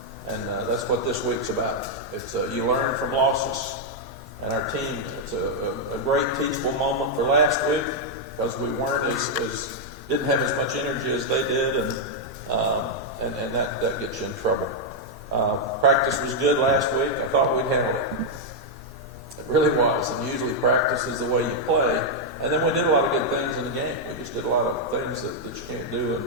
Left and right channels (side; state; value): both; normal; correlation -0.02